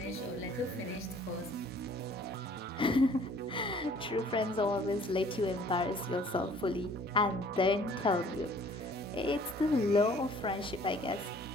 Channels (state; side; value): normal; both; correlation 0.55